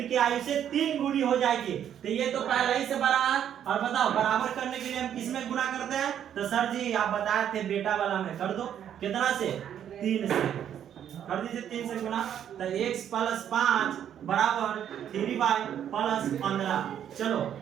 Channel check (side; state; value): left; quieter; 9.7 dB